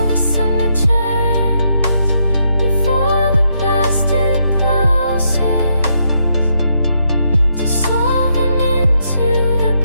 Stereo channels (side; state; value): both; inverted; correlation -0.77